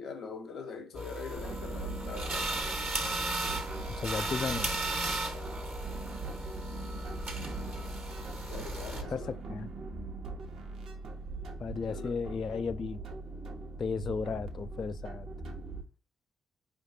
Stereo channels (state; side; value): normal; both; correlation 0.71